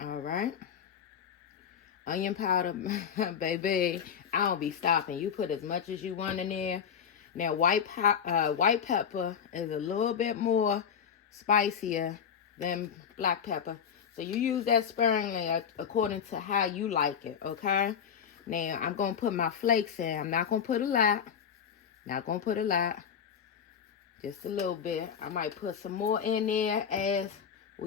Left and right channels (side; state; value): right; quieter; 7.5 dB